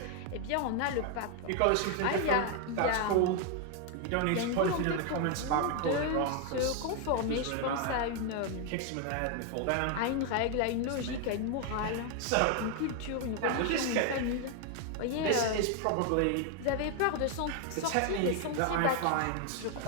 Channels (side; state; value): both; different; correlation 0.00